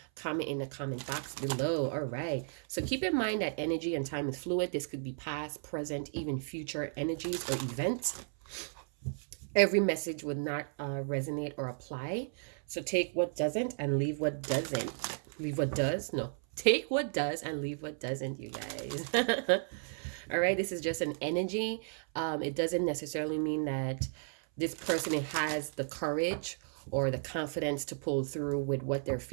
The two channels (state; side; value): silent; left; 55 dB below the other